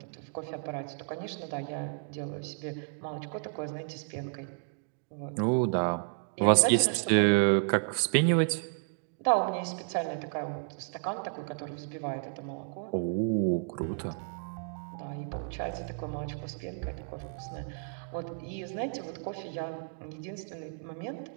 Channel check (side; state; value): left; silent; digital silence